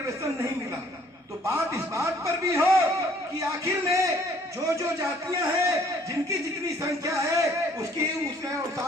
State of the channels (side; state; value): both; normal; correlation 0.60